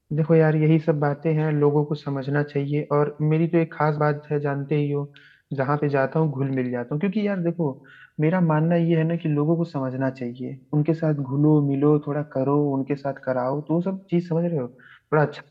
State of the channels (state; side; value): identical; both; correlation 1.00